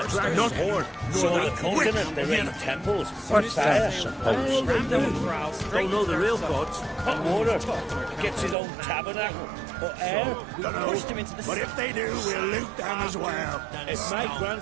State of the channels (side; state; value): left; drops out; at 8.6 s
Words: dragon's horn. So on the continent they're in temples. What fire, suppose? Don't know the real gods. Hot water. Gets his own tabernacle. Or air. Pushed him into the But sea. if they do, we'll loot them as well. If my